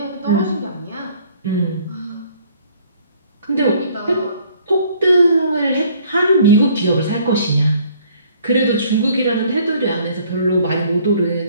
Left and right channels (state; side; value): inverted; both; correlation -0.59